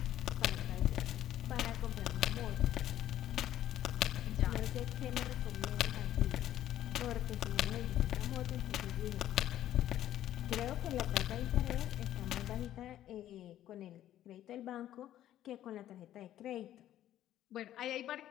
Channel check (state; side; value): quieter; right; 12.4 dB